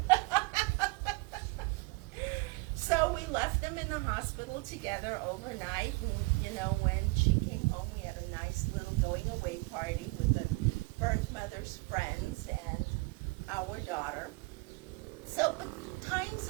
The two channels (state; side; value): quieter; left; 26.4 dB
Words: So we left them in the hospital together overnight, and when she came home, we had a nice little going away party with the birth mother's friends and our daughter. So the times